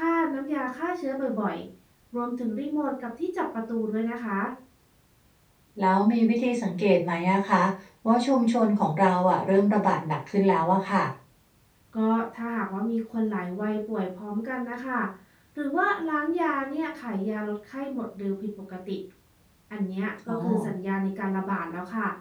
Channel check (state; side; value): identical; both; correlation 1.00